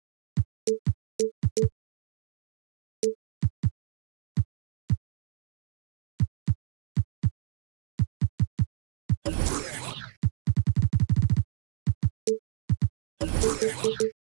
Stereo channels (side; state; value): left; silent; digital silence